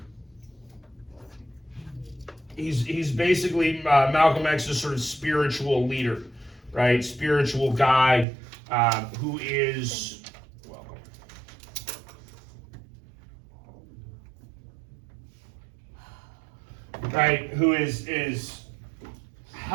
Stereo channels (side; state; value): left; drops out; at 8.2 s